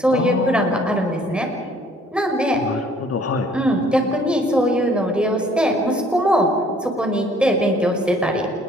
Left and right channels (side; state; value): both; normal; correlation 0.58